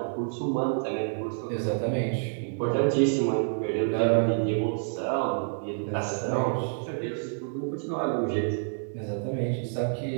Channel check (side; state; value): left; silent; digital silence